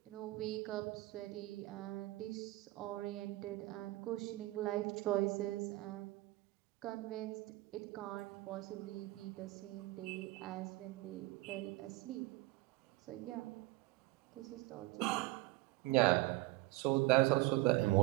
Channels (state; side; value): quieter; left; 19.7 dB